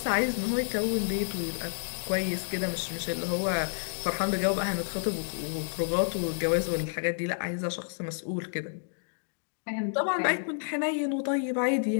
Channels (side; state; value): right; silent; digital silence